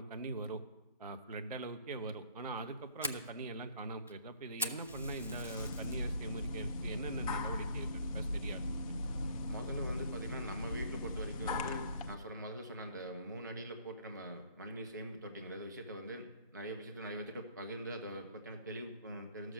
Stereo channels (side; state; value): both; inverted; correlation -0.59